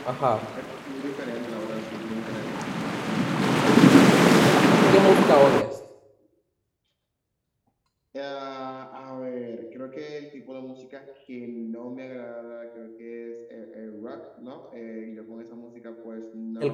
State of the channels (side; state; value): both; identical; correlation 1.00